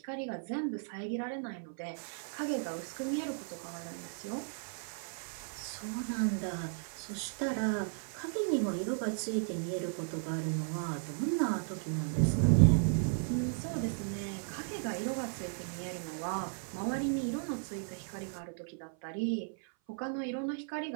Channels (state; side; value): silent; left; 54 dB below the other